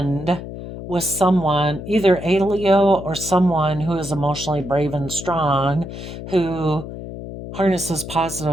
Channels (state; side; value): noise; left; hum, 10 dB below the sound